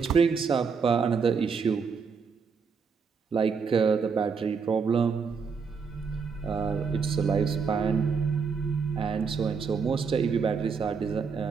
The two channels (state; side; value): quieter; left; 5.6 dB